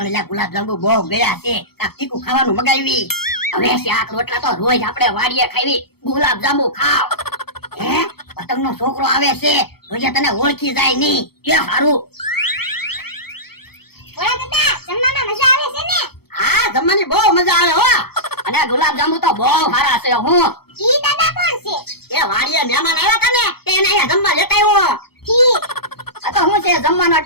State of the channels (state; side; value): late; right; 0.96 ms